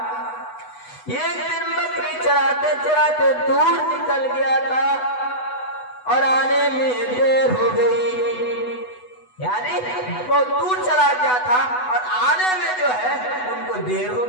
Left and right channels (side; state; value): right; late; 8.0 ms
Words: एक दिन बकरी चराते चराते दूर निकल गया था और आने में देर हो गई, यानी बहुत दूर चला गया था और आने में जो है उनको देर हो